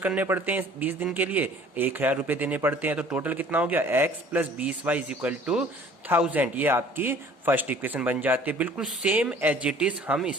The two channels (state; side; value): normal; both; correlation 0.52